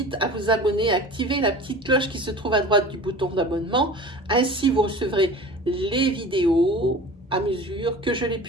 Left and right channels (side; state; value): both; normal; correlation 0.39